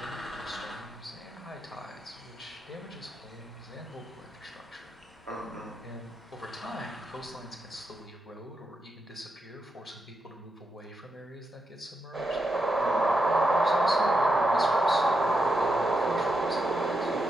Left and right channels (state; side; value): normal; both; correlation 0.84